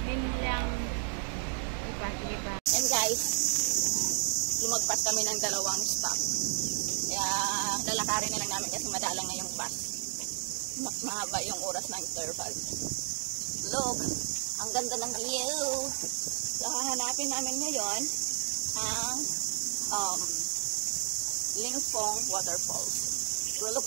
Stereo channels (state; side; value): silent; left; 56 dB below the other